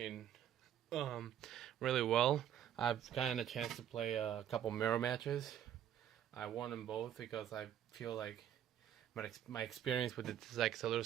um really well. I've gotten a chance to play a couple mirror matches. I won them both because I feel like my experience with it is like a little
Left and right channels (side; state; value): left; quieter; 10.2 dB